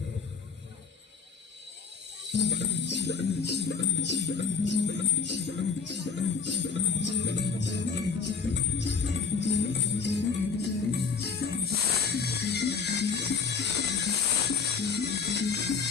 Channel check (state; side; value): quieter; right; 5.5 dB